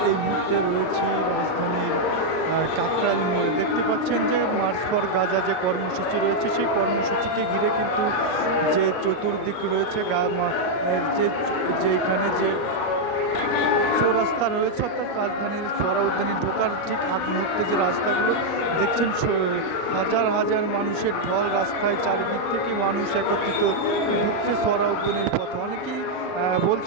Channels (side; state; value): right; late; 38 ms